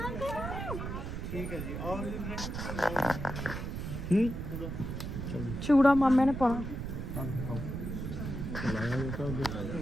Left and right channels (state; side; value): noise; right; rumble, 5 dB below the sound